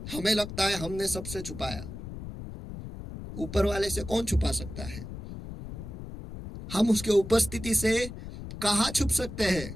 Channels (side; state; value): left; noise; rumble, 10 dB below the sound